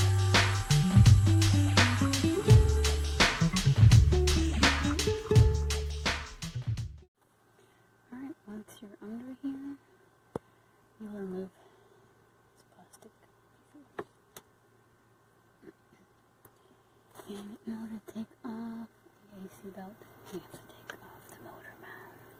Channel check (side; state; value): both; identical; correlation 1.00